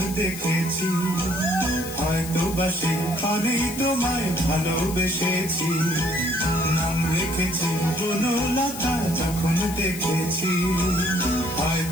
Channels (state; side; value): noise; left; hiss, 11 dB below the sound